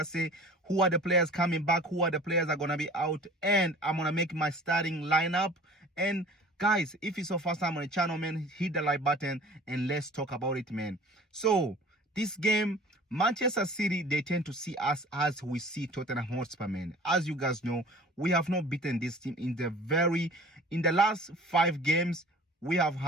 say? Who are the players coming back? Who are the players that are going to be out? And I'm going to make my starting lineup. And guys, if it's your first time on the channel, man, hit the like button and let's talk about it, man. So this game, Manchester City, they tend to see us as we see Tottenham Hotspur, man. As you guys know, we have not beaten this team in the last 5 games. We have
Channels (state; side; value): normal; both; correlation 0.45